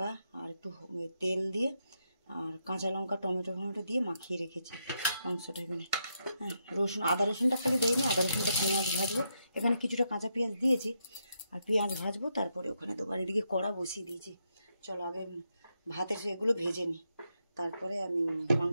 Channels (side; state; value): both; inverted; correlation -0.81